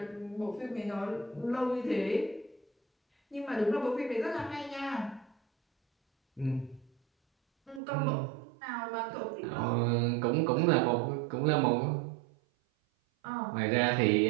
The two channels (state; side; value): drops out; left; at 7.8 s